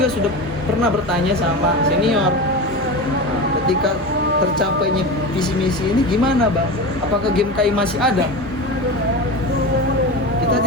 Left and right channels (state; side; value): normal; both; correlation 0.25